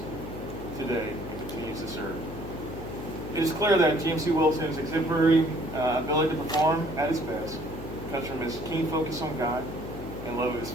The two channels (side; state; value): left; noise; hum, 10 dB below the sound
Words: today and continues to serve. It is clear that GMC Wilson's exemplary ability to perform at his best comes from his keen focus on God and love of his